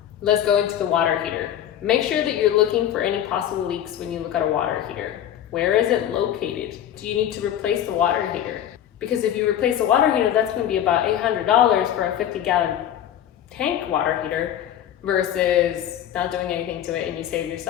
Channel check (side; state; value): right; quieter; 10.7 dB